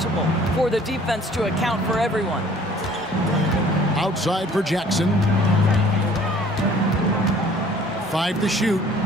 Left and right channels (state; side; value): normal; both; correlation 0.54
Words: for the defense to account for everyone. Outside for Jackson. 5 to shoot.